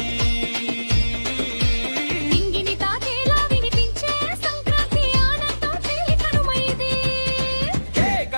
ఇంగిని తాకేలా వినిపించే సంక్రాంతి ఆనందం తేలి కనుమైది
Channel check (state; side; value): inverted; both; correlation -1.00